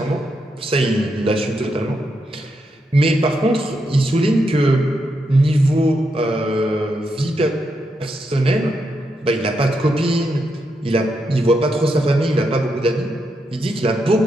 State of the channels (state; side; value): normal; both; correlation 0.82